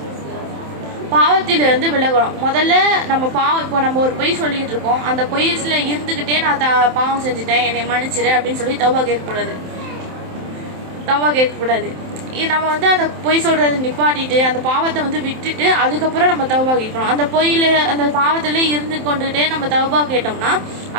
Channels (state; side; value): late; left; 27 ms